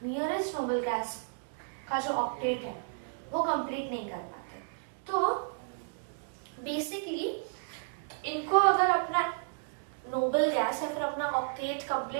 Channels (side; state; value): left; silent; digital silence